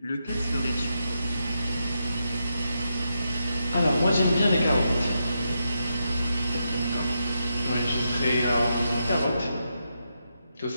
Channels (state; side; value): inverted; both; correlation -0.84